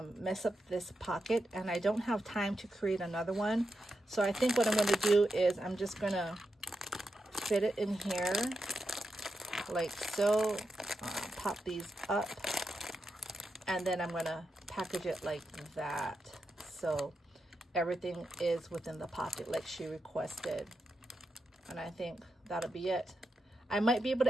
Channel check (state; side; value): normal; both; correlation 0.87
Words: mess up this pocket, and I don't have time to create another one. So I think what I'm gonna do is I'm just gonna fit it in here like so, pop these up, and then I'm gonna package it like that, so everything is within the pocket like she requested. And I think that'll be it. I might be able